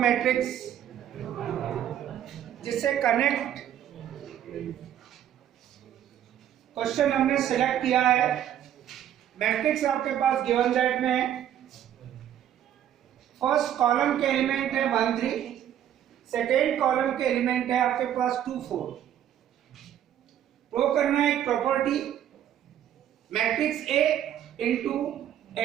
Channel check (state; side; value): quieter; left; 10.7 dB